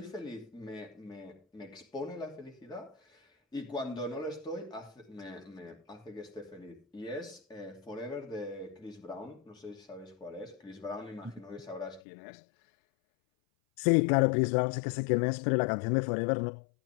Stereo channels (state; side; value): drops out; right; at 12.0 s